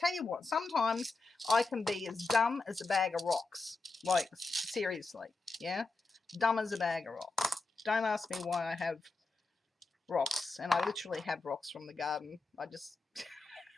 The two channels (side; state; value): right; quieter; 3.7 dB